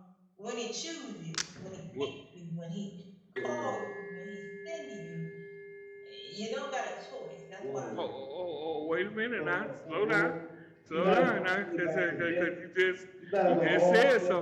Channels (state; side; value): identical; both; correlation 1.00